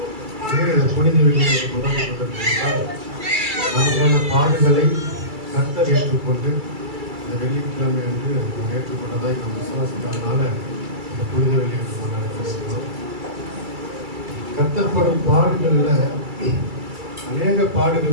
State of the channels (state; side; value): late; left; 2.3 ms